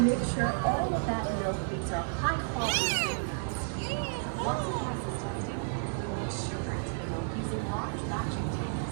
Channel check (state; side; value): silent; left; digital silence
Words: make sure all of that milk beans are high quality. Once the process testing, we mix sugar into the milk using large batching